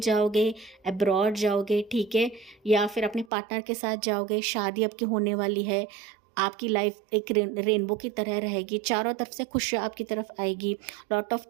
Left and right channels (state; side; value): drops out; left; at 3.3 s